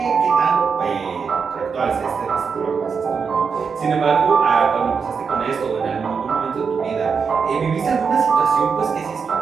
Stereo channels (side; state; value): left; quieter; 5.8 dB